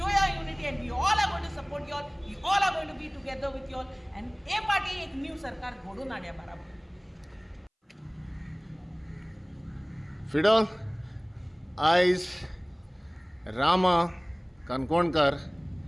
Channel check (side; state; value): both; identical; correlation 1.00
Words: your unity and we all are going to support you all, we all are going to be together with you all and a party एक new सरकार घडून हाडया बाराबर. फिडो आयज Rama Kankonkar